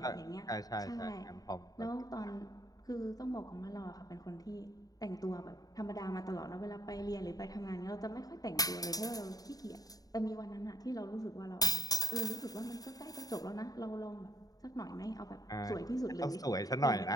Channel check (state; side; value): late; right; 0.18 ms